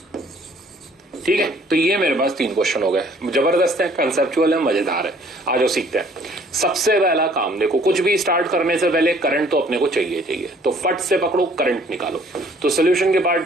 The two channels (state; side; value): normal; both; correlation 0.58